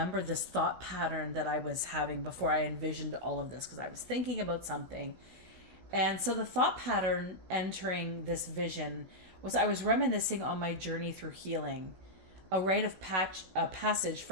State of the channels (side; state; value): left; late; 16 ms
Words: this thought pattern that I was having before I envisioned all of this, because I was thinking about something. And so the thought pattern entering this vision was I was reminiscing on my journey through healing, a rite of passage